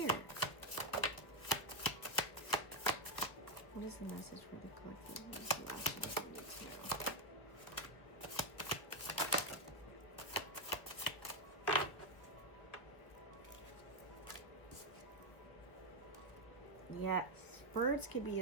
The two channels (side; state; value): right; late; 1.2 ms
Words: What is the message for the collective? What is the last thing we need to know? Yes, birds could be